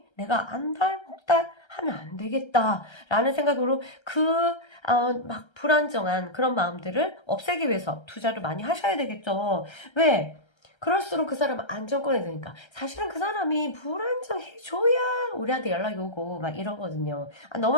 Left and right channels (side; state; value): right; late; 1.3 ms